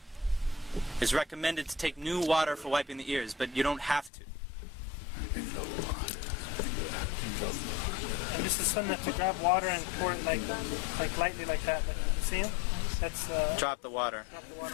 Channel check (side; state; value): right; drops out; at 4.1 s